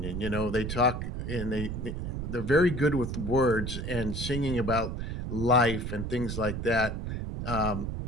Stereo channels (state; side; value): noise; right; rumble, 4 dB below the sound